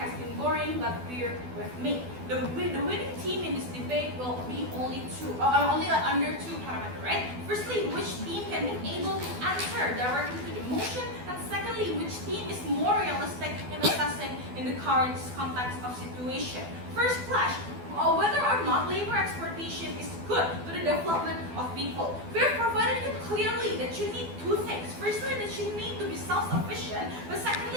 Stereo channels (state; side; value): late; left; 12 ms